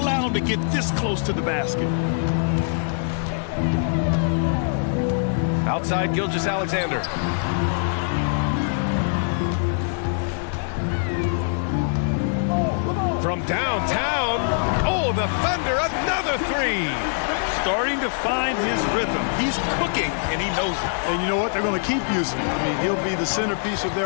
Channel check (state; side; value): silent; right; digital silence